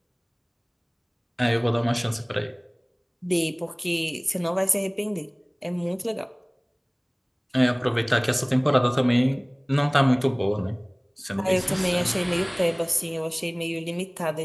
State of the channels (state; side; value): identical; both; correlation 1.00